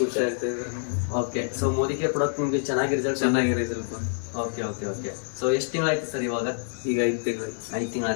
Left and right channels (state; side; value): silent; right; digital silence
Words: ಆಗ್ತಾ ಇದೆ? Okay, so Modi care product ನಿಮ್ಗೆ ಚೆನ್ನಾಗಿ ರಿಸಲ್ಟ್. ಓಕೆ. ಸೊ ಎಷ್ಟು ತಿಂಗಳಾಯ್ತು ಸರ್ ಇವಾಗ? ಈಗ 5